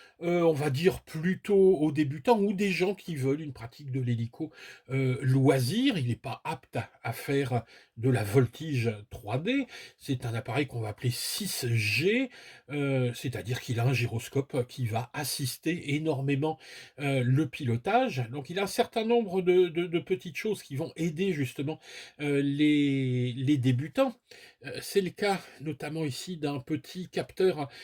On va dire plutôt aux débutants ou des gens qui veulent une pratique de l'hélico, loisir. Il n'est pas apte à faire de la voltige 3D. C'est un appareil qu'on va appeler 6G, c'est-à-dire qu'il a un gyroscope qui va assister énormément, le pilotage. Donc il a un certain nombre de petites choses qui vont aider justement, les débutants. C'est le cas notamment ici d'un petit capteur,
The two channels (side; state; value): both; identical; correlation 1.00